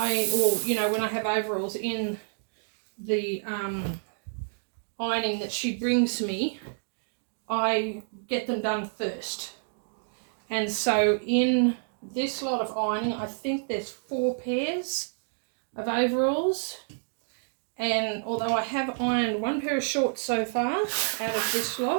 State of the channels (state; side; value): silent; left; digital silence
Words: I have overalls in the ironing that she brings me, I get them done first. And so in this lot of ironing, I think there's 4 pairs of overalls. And although I have ironed 1 pair of shorts so far out of this